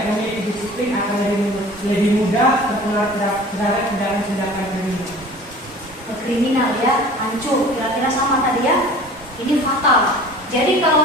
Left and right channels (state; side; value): normal; both; correlation 0.44